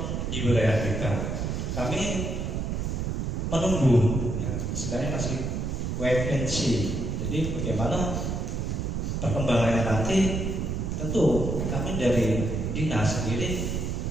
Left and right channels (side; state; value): right; noise; rumble, 1 dB below the sound